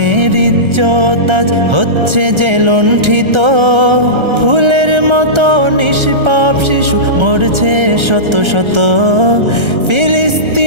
ইজ্জত আজ হচ্ছে যে লুণ্ঠিত। ফুলের মতো নিষ্পাপ শিশু মরছে শত শত।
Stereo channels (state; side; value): late; left; 1.3 ms